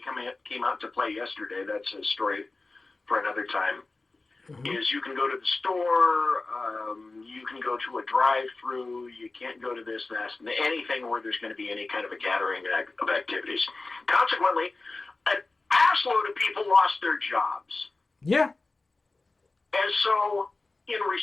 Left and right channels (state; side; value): quieter; right; 3.4 dB